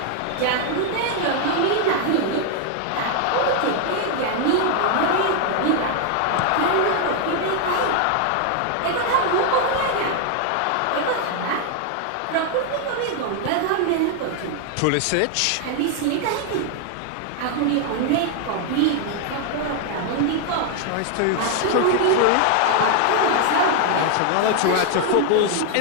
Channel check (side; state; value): both; different; correlation 0.00